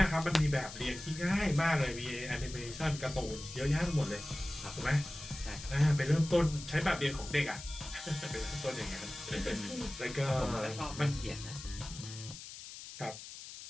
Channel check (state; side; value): noise; left; hiss, 12 dB below the sound